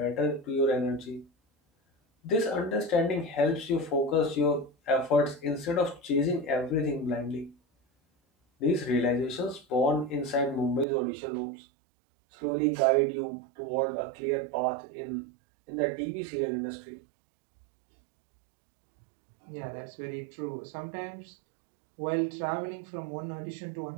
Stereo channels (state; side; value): drops out; left; at 10.9 s